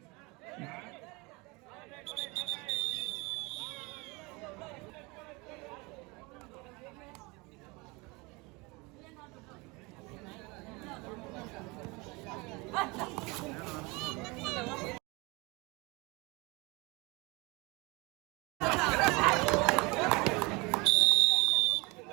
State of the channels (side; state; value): left; quieter; 26.0 dB